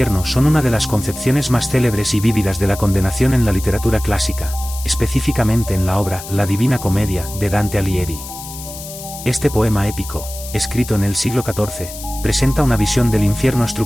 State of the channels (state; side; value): noise; left; hiss, 12 dB below the sound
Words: son una de las concepciones más célebres y vívidas de la condenación en la literatura clásica, específicamente en la obra La Divina Comedia de Dante Alighieri. Este poema épico, escrito en el siglo XIV, presenta una visión del infierno